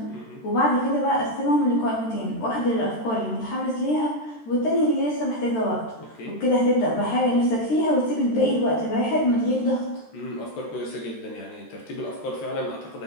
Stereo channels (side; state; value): right; late; 13 ms